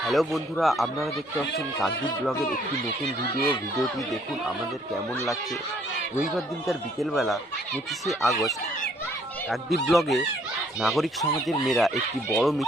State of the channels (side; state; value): both; normal; correlation 0.64